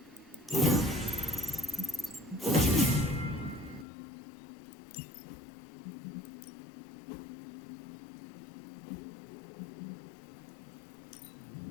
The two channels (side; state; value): right; drops out; at 3.9 s